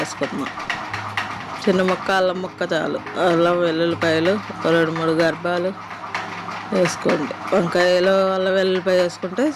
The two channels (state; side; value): identical; both; correlation 1.00